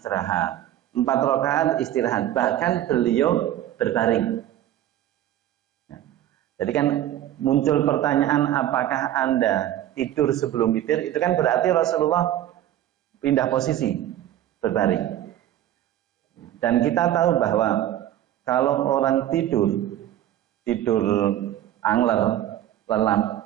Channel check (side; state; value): left; quieter; 12.4 dB